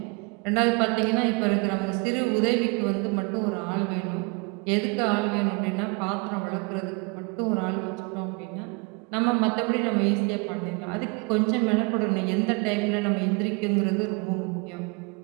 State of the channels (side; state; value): left; quieter; 30.3 dB